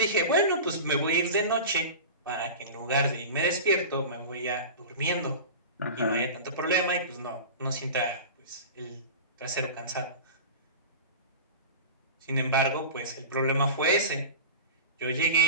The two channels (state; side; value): inverted; both; correlation -0.32